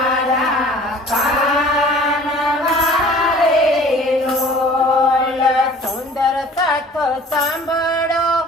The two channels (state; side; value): normal; both; correlation 0.48